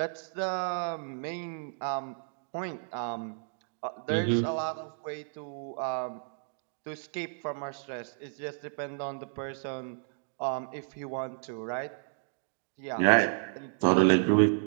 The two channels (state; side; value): silent; left; digital silence